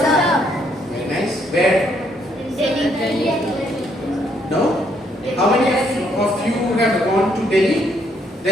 Very nice. Where? No? How many of you have gone to Delhi?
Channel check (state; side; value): normal; both; correlation 0.70